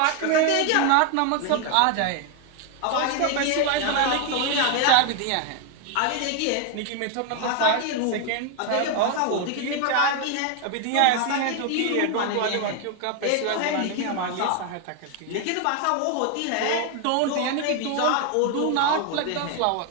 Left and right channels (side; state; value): both; different; correlation 0.01